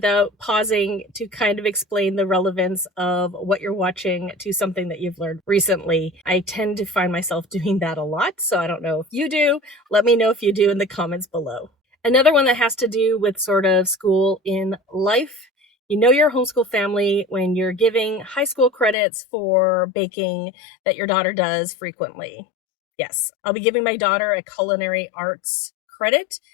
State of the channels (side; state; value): right; drops out; at 18.9 s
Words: pausing to kind of explain the relevance of what you're watching to something that you've learned recently. I tend to find myself doing that a lot, so I don't know if you do. Let me know if you do in the comments below. Another one that has to do with sort of school in life. You know you're a homeschool family when you're giving high school credits for baking that your daughter does frequently. Yes, I'll be giving my daughter a culinary arts credit